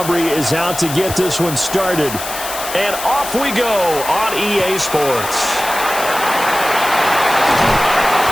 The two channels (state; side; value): noise; left; hiss, 8 dB below the sound